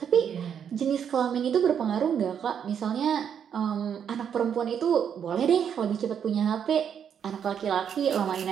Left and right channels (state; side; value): quieter; left; 8.1 dB